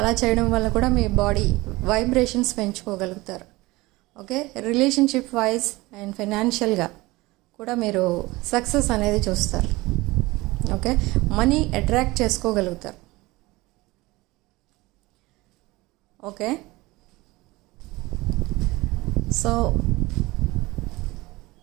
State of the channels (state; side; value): quieter; left; 20.9 dB